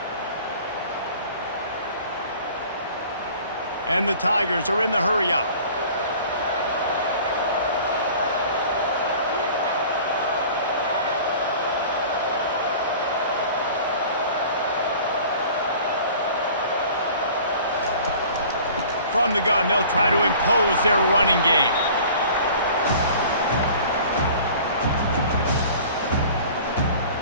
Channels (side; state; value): both; inverted; correlation -0.46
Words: And the Tigers are in the hurry-up. From the gun, they'll try to impose their running game.